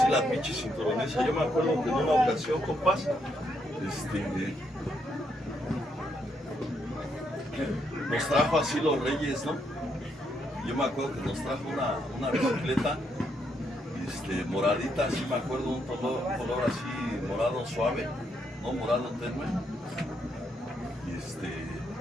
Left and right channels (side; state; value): both; normal; correlation 0.76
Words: la pinche cinturoniza. Yo me acuerdo que en una ocasión, compas, nos trajo así los reyes, ¿no? Yo me acuerdo que nos trajo una bicicleta moradita, así me acuerdo, un color así morado suave, ¿no? Morado tenue.